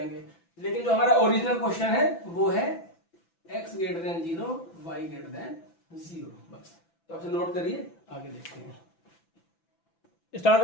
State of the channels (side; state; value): right; late; 6.0 ms